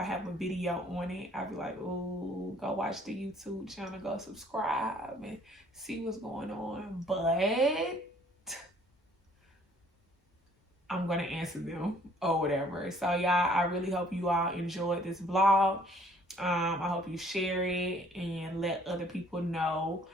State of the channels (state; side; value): normal; both; correlation 0.59